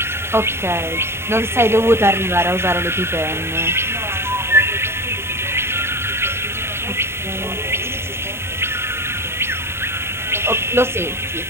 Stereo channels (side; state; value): left; late; 0.12 ms